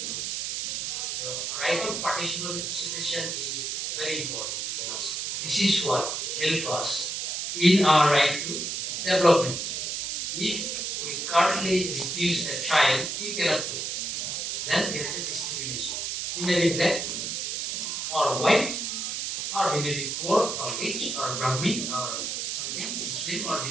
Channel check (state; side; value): noise; right; hiss, 3 dB below the sound